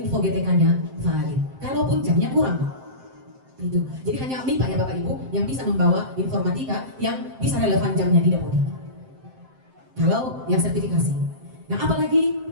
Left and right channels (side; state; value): left; late; 7.7 ms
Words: GTK-nya valid. Kalaupun jamnya kurang, itu. Jadi hanya MIPA ya Bapak Ibu yang bisa membawa informatika yang bisa relevan jamnya di dapodik. Kalau yang sertifikasi. Nah, apalagi